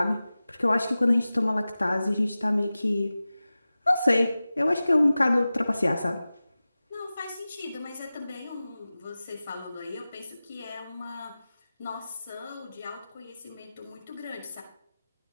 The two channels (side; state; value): both; inverted; correlation -0.96